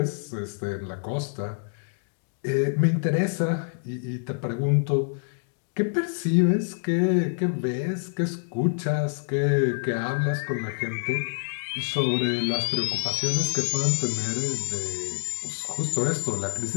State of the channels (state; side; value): silent; right; digital silence